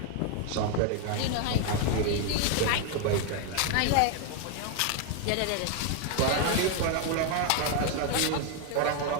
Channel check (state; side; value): different; both; correlation 0.00